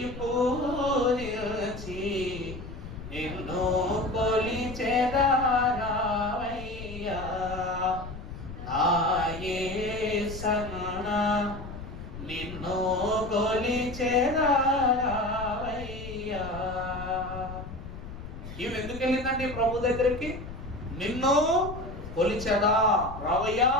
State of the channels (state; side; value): noise; left; rumble, 11 dB below the sound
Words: పూజించి నిన్ను కొలిచెదరావయ్యా నా యేసన్నా, నిన్ను కొలిచెదరావయ్యా. ఈమె ఎందుకు వెళ్ళిందండి ప్రభు దగ్గరికి? నిన్ను కొలిచెదా రావయ్యా,